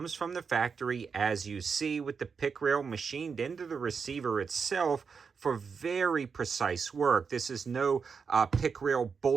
from the factory, as you see, with the pick rail machined into the receiver itself for very precise work. This is no pick rail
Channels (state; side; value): quieter; left; 5.7 dB